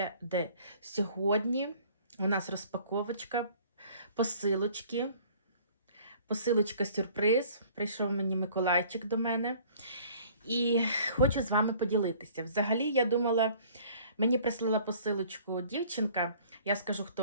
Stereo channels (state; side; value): inverted; both; correlation -0.53